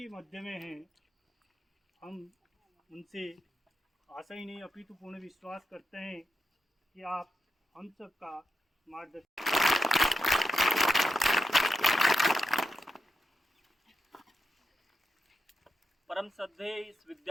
मध्य में हैं। हम उनसे आशा ही नहीं अपितु पूर्ण विश्वास करते हैं कि आप हम सब का मार्गदर्शन परम श्रद्धेय इस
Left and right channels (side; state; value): both; normal; correlation 0.86